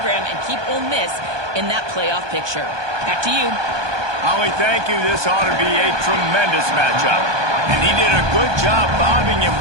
and keep Ole Miss in that playoff picture? Back to you. Holly, thank you. This ought to be a tremendous matchup. And he did a good job bobbing and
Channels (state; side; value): late; left; 1.2 ms